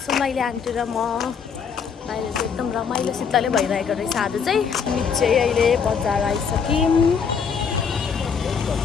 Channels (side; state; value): right; quieter; 6.4 dB